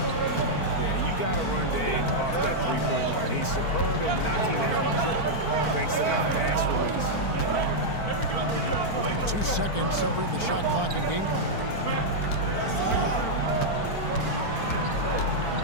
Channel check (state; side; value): late; right; 4.5 ms